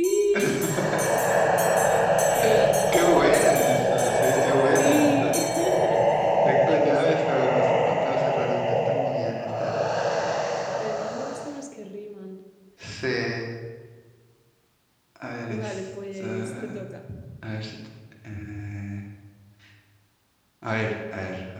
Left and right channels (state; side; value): identical; both; correlation 1.00